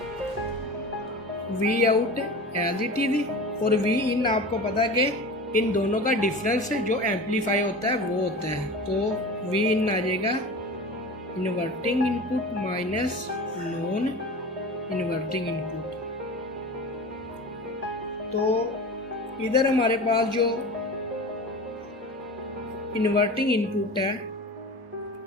V out as it is और V इन आपको पता है कि इन दोनों का डिफरेंस जो एम्पलीफाई होता है वो होता है। तो V इन आ जाएगा inverting input minus non inverting input. तो इधर हमारे पास जो इन्वर्टिंग इनपुट है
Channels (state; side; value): normal; both; correlation 0.34